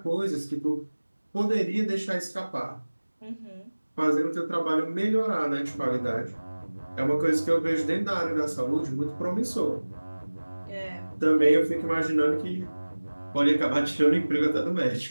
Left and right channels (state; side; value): inverted; both; correlation -1.00